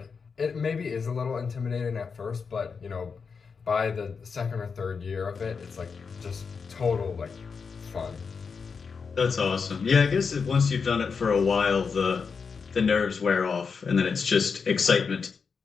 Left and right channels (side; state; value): right; quieter; 5.5 dB